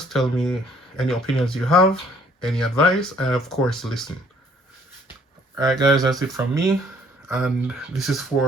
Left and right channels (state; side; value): normal; both; correlation 0.61